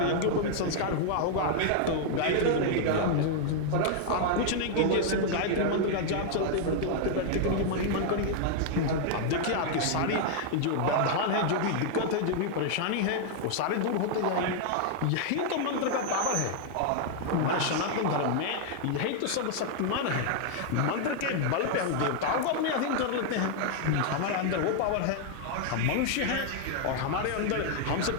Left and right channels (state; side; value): different; both; correlation 0.00